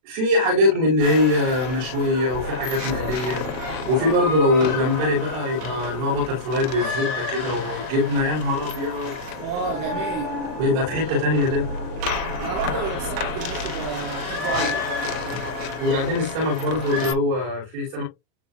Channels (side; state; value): left; late; 40 ms